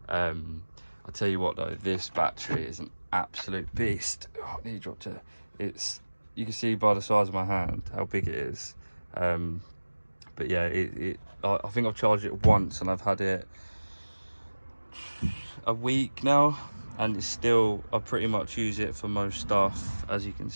I'll tell you what though, this battery is an absolute beast. Oh, knee dropped it. You can see by the size of my hand how big it is. But yeah, I think I've charged it once and I've had it a week now, and it's still, I pretty much use it for most stuff. As you can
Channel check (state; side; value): inverted; both; correlation -1.00